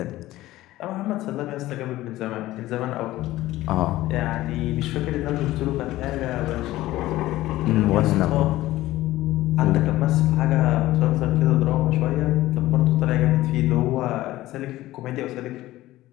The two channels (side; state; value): right; quieter; 16.4 dB